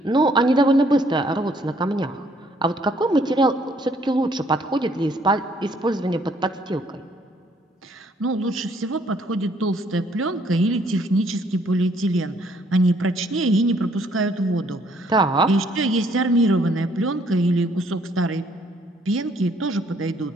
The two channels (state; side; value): normal; both; correlation 0.65